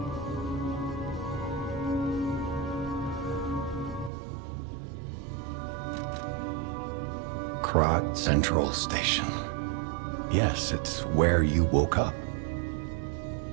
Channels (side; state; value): left; drops out; at 4.1 s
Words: Krat Central Station. Yes, it's where you woke up.